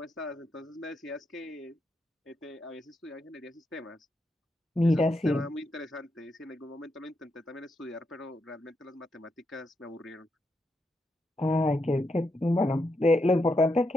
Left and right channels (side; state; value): both; normal; correlation 0.82